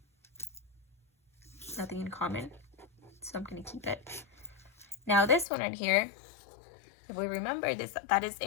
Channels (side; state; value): right; drops out; at 5.5 s